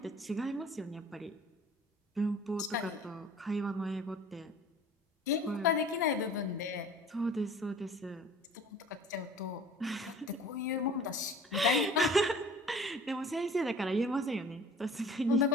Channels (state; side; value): normal; both; correlation 0.47